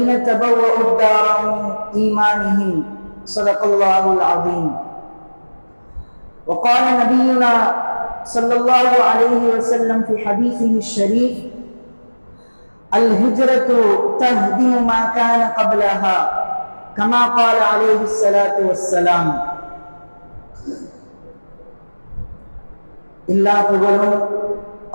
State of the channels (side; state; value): both; inverted; correlation -1.00